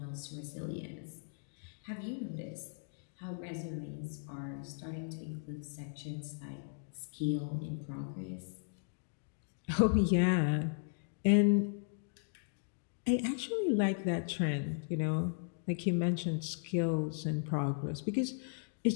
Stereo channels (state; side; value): silent; right; digital silence